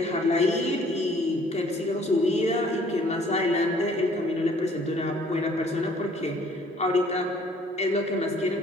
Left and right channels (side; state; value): both; normal; correlation 0.58